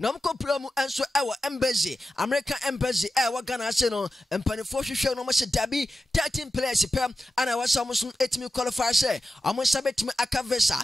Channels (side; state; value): both; normal; correlation 0.92